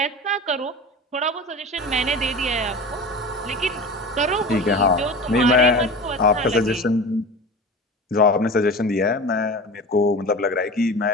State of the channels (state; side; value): normal; both; correlation 0.33